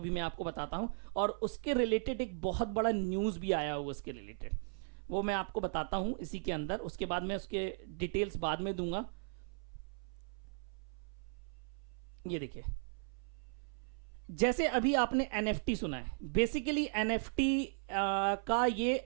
भी मैं आपको बताता हूं, और उसके रिलेटेड एक बहुत बड़ा न्यूज भी आया हुआ उसके रिलेटेड, वो मैं आपको बताता हूं इसी के अंदर। उसके बाद मैं उसके डिटेल्स बाद में दूंगा। ये देखिए, जैसे अभी आपने एनएफटी सुना है, बेसिकली एनएफटी का ये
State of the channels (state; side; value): silent; left; 53 dB below the other